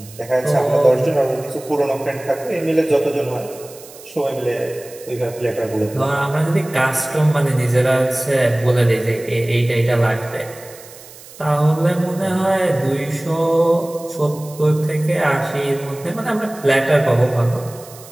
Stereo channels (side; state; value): right; noise; hiss, 19 dB below the sound